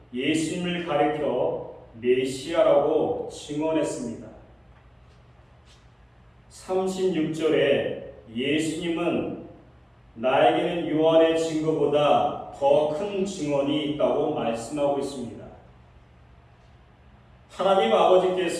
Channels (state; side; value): identical; both; correlation 1.00